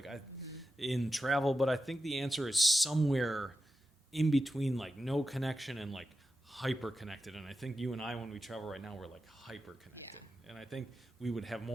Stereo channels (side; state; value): both; normal; correlation 0.90